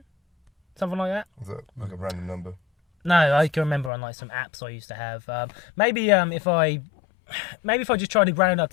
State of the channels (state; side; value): drops out; right; at 3.9 s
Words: something like that. Is that like a random number? No, I can remember on like some apps I used to have. Maybe if I just try to round up